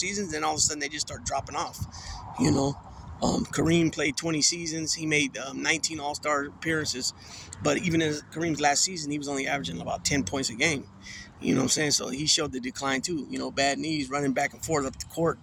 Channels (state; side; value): identical; both; correlation 1.00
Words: and all of a sudden they just start dropping off. Kareem played 20 seasons. He made 19 All-Star appearances. But even in Kareem's last season, he was only averaging about 10 points a game. You know what I'm saying? So he showed the decline too. Bad knees, running back and forth up the court,